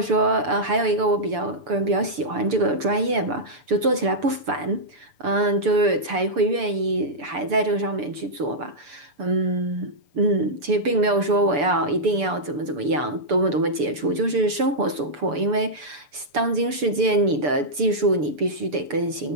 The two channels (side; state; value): left; late; 6.9 ms